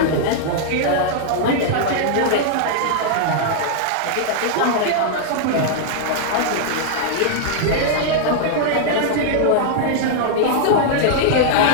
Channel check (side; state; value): both; different; correlation -0.01